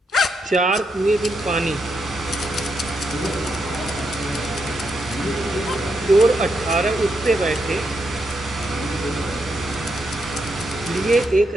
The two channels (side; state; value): both; normal; correlation 0.81